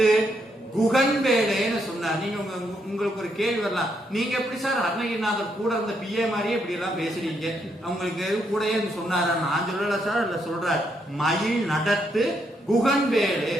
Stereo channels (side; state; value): both; normal; correlation 0.76